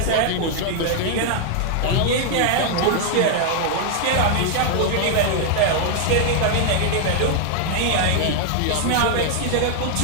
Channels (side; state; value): both; different; correlation 0.00